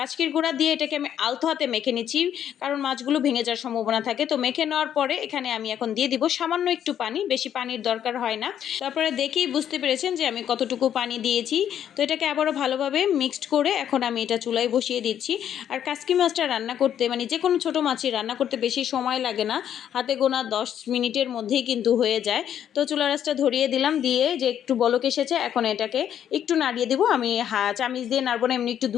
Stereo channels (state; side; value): quieter; right; 9.8 dB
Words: গুঁড়া দিয়ে এটাকে আমি আলতো হাতে মেখে নিচ্ছি, কারণ মাছগুলো ভেঙে যাওয়ার সম্ভাবনা থাকে। তো মেখে নেওয়ার পরে এখানে আমি এখন দিয়ে দিব সামান্য একটু পানি, বেশি পানির দরকার হয় না। তারপরে দেখেই বুঝতে পেরেছেন যে আমি কতটুকু পানি দিয়েছি। তো এটাকে আবারও ভালোভাবে মিক্সড করে এখন আমি এটা চুলায় বসিয়ে দিচ্ছি। আর কাচকি মাছটা রান্না করতে, মানে যে কোনো ছোটো মাছই রান্না করতে বেশি সময় লাগে না, হাতে গোনা 10 মিনিটের মধ্যেই কিন্তু হয়ে যায়। তো চুলা রাসটা ধরিয়ে দিলাম, দিয়ে যে একটু বলক এসেছে, এখন এটাকে একটু নাড়িয়ে দিব। আমি চামিচ দিয়ে নাড়বো না, এমনি একটু